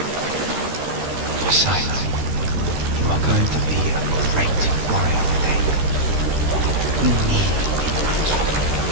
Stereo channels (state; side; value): late; left; 13 ms